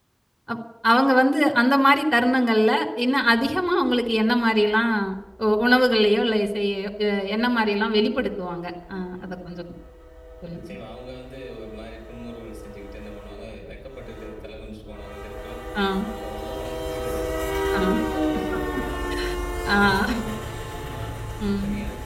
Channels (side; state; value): both; identical; correlation 1.00